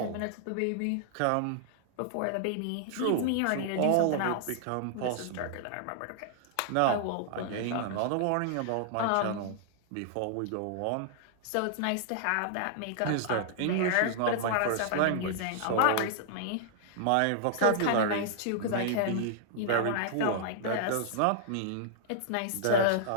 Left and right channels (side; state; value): both; different; correlation -0.01